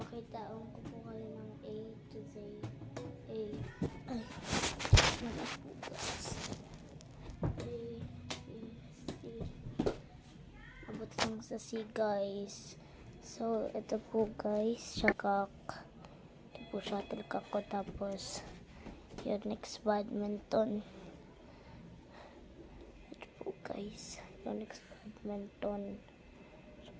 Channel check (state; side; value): identical; both; correlation 1.00